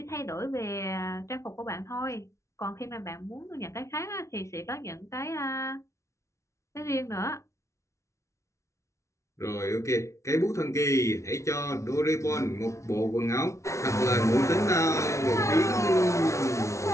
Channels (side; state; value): right; late; 0.14 ms